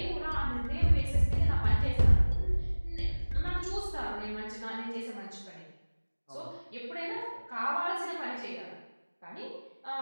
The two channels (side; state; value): both; inverted; correlation -1.00